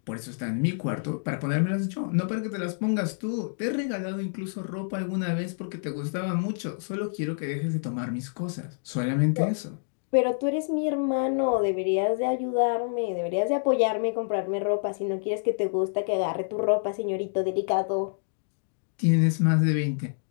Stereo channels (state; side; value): silent; right; digital silence